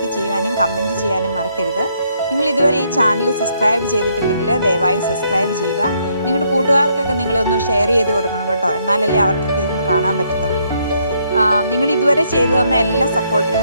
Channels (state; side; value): inverted; both; correlation -0.72